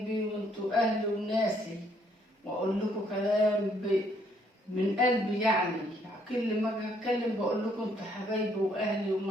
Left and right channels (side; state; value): both; normal; correlation 0.68